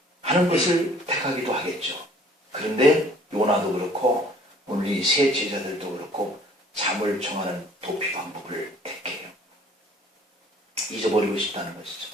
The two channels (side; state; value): both; normal; correlation 0.55